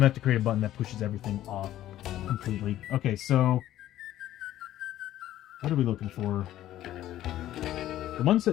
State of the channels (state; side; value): quieter; right; 13.2 dB